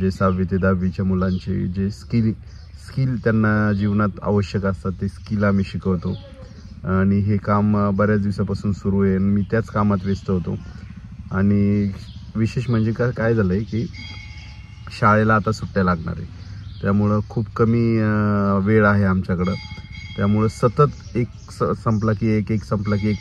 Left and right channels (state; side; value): identical; both; correlation 1.00